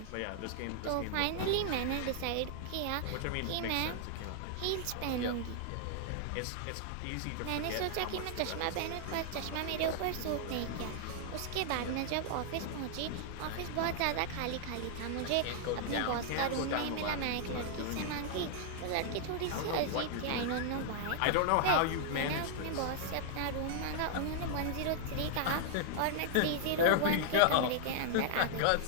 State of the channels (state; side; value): different; both; correlation -0.01